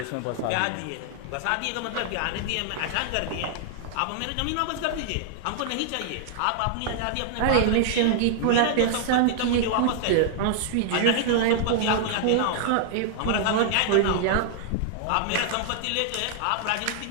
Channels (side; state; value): both; different; correlation -0.01